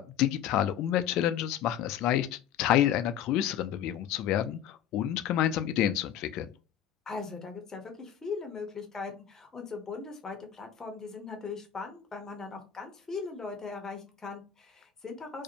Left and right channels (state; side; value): quieter; right; 10.0 dB